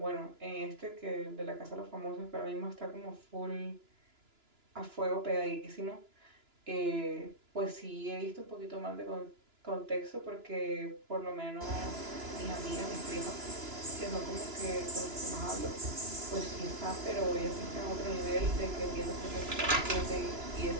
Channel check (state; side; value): late; left; 2.9 ms